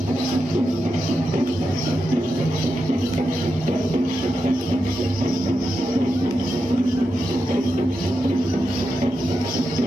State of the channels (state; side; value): normal; both; correlation 0.88